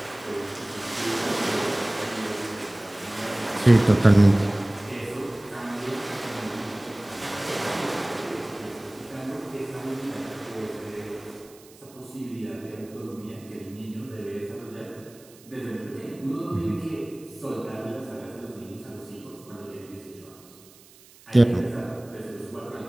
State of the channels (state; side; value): noise; right; hiss, 24 dB below the sound